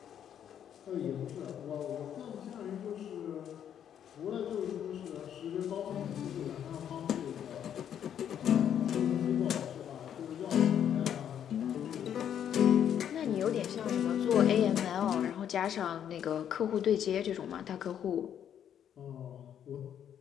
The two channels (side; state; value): right; quieter; 9.4 dB